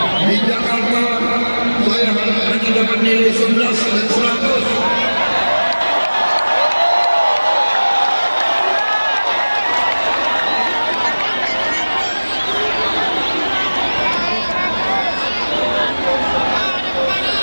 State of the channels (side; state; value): both; inverted; correlation -1.00